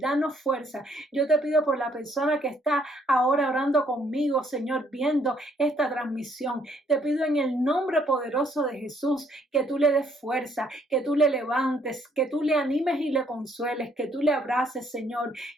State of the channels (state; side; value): normal; both; correlation 0.67